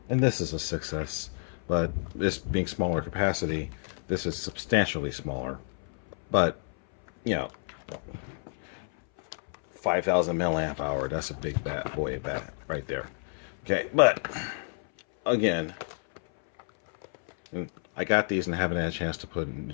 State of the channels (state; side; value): silent; right; 58 dB below the other